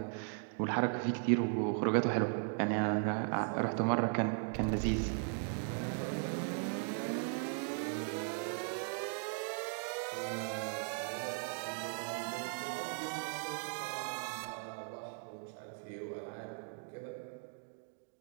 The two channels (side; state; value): left; silent; 53 dB below the other